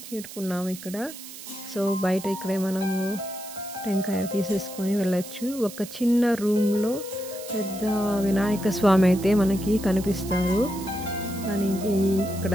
చేరుకున్నాము ఇక్కడ. సో బయట ఇక్కడే మనము టెంకాయ తీసేసుకొని వెళ్ళచ్చు. ఒక చిన్న రూమ్లో పెద్ద వినాయక స్వామి అయితే మనకి కనిపిస్తారు. కానీ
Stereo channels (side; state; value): right; noise; hiss, 14 dB below the sound